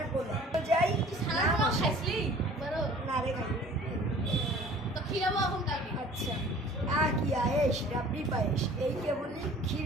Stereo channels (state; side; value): normal; both; correlation 0.48